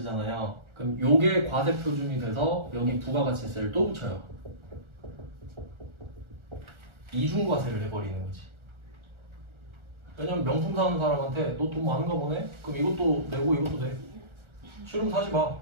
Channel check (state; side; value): late; left; 1.4 ms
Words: 그럼 요게 과세 표준이 돼서 여기 부가가치세를 또 붙여요. 이중과세를 해버리는 거지. 왜냐면 명품 사는 사람한테 너 돈 많은가 보네? 그럼 이것도 내고 이것도 내. 싫으면 사지 마.